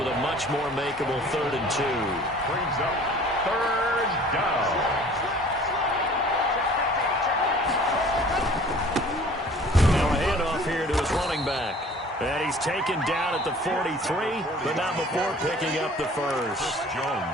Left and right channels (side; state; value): both; normal; correlation 0.49